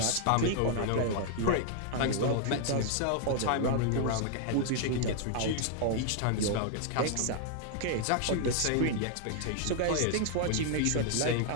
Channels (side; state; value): both; different; correlation 0.00